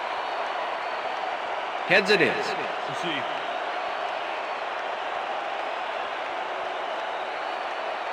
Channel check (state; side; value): identical; both; correlation 1.00